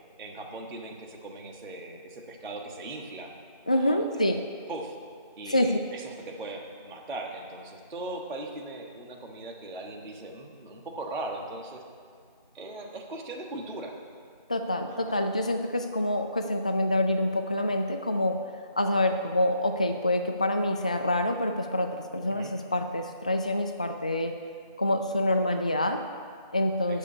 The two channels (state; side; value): inverted; both; correlation -0.70